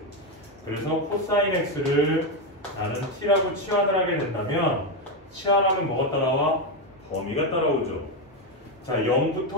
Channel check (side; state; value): both; normal; correlation 0.08